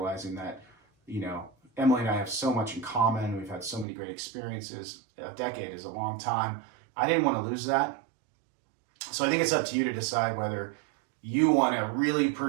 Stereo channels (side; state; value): left; drops out; at 3.9 s